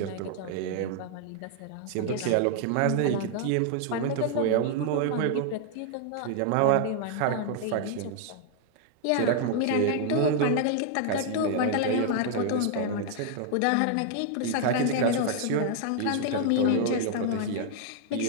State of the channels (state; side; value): different; both; correlation 0.00